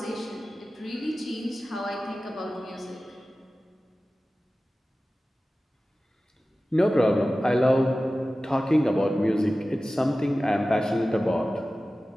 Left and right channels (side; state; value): both; normal; correlation 0.96